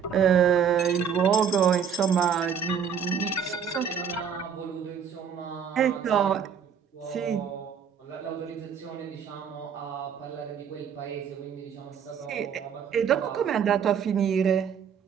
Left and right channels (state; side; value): quieter; left; 7.5 dB